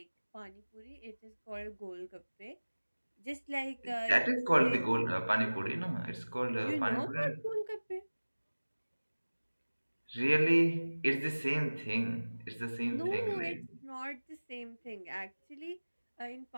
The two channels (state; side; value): inverted; both; correlation -1.00